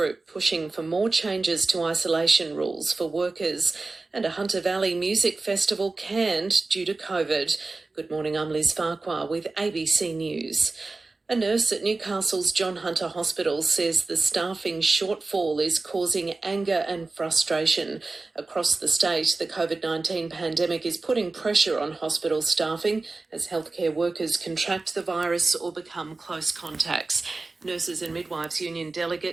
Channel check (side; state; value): left; quieter; 3.5 dB